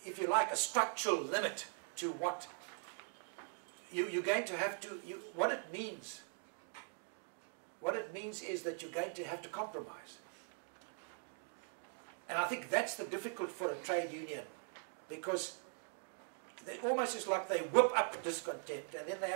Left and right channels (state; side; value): silent; left; 50 dB below the other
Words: if you like, a structural limit to what you're going to have to, what it means is that you're going to have to compromise. And I think that's the difficult for a trade union, because they almost is like they whip up discontent and then they